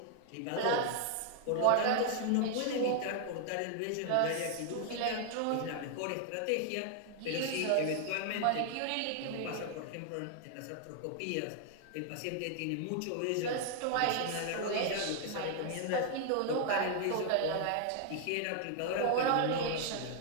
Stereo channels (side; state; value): both; different; correlation 0.00